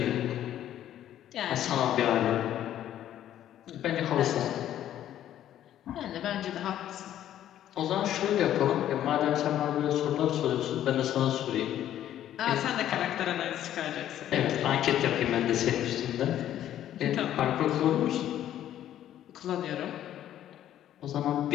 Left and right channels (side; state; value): right; quieter; 11.7 dB